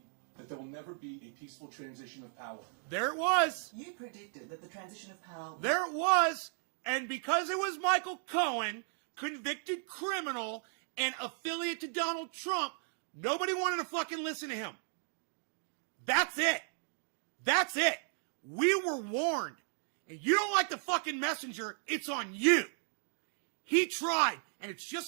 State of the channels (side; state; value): left; silent; 54 dB below the other